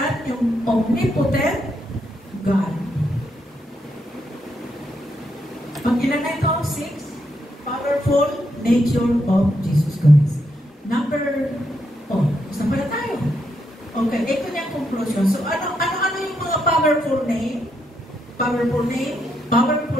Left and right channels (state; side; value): normal; both; correlation 0.79